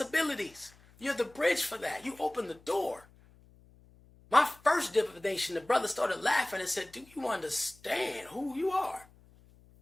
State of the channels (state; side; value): noise; left; hum, 26 dB below the sound